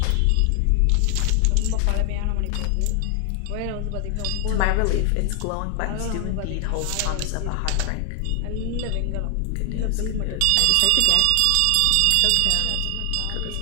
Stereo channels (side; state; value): both; different; correlation 0.00